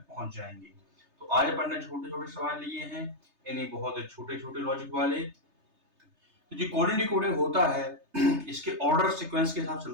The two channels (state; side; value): late; left; 3.3 ms